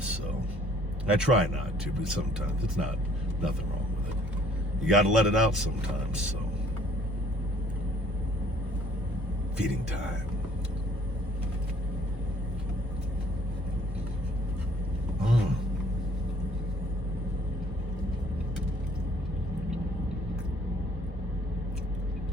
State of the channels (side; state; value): both; normal; correlation 0.59